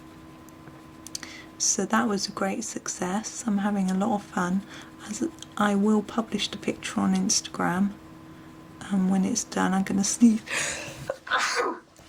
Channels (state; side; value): identical; both; correlation 1.00